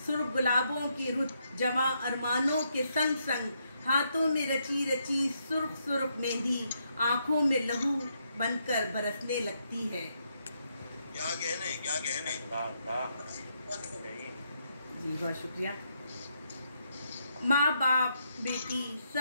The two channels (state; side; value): inverted; both; correlation -0.78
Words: سرخ گلابوں کی رت، جواں ارمانوں کے سنگ سنگ، ہاتھوں میں رچی رچی سرخ سرخ مہندی آنکھوں میں لہو بن کر برسنے لگتی ہے۔ کیا کہنے جی بہت شکریہ۔ ماں باپ بیٹی